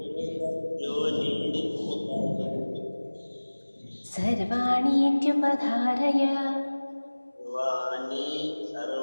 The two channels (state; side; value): inverted; both; correlation -1.00